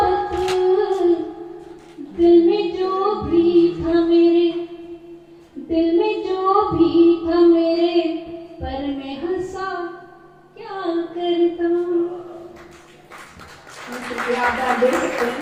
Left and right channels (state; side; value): identical; both; correlation 1.00